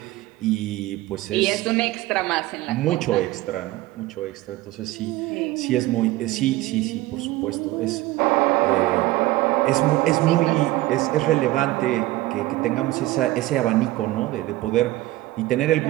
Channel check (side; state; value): left; quieter; 17.7 dB